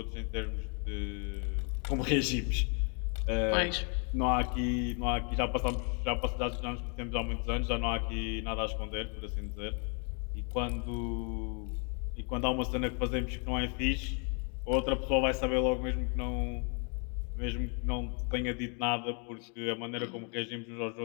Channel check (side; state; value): right; quieter; 38.7 dB